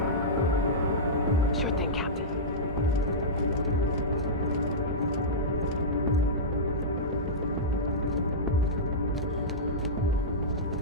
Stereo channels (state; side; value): normal; both; correlation -0.12